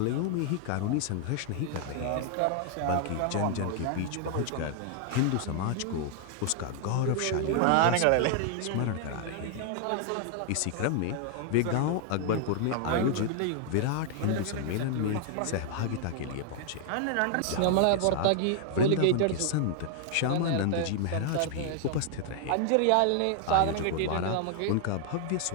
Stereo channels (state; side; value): different; both; correlation 0.00